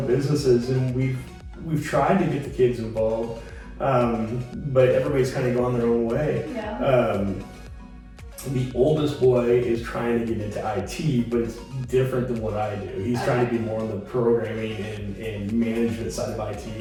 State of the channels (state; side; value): identical; both; correlation 1.00